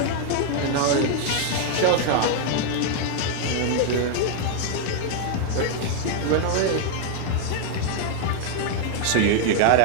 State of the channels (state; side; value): different; both; correlation 0.00